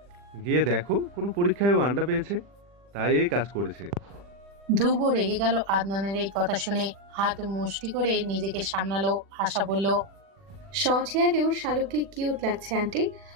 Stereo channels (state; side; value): late; left; 40 ms